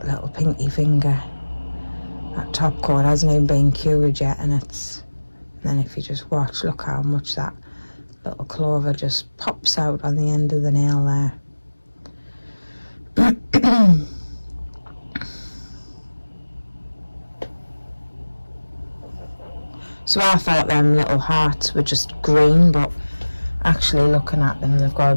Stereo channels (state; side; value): inverted; both; correlation -1.00